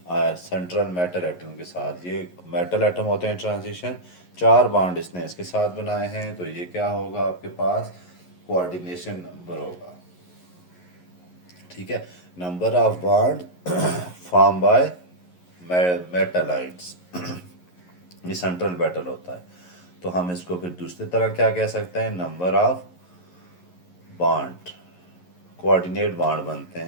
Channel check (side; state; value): right; late; 11 ms